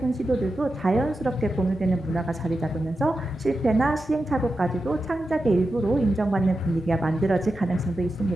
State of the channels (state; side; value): normal; both; correlation 0.90